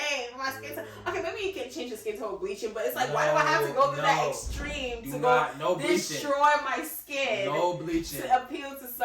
My skin tone. Okay, maybe you can change your skin tone bleaching, but it's like, why do I have to go through that extreme to destroy my skin? No bleaching. To appeal to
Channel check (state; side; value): identical; both; correlation 1.00